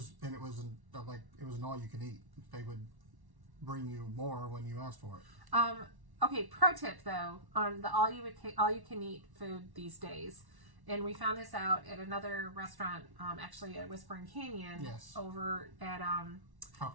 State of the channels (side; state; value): left; late; 1.1 ms